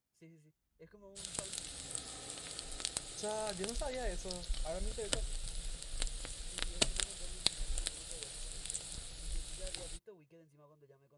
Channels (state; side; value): identical; both; correlation 1.00